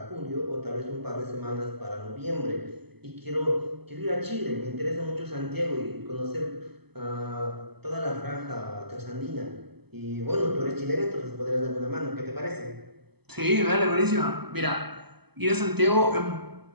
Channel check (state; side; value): late; left; 0.97 ms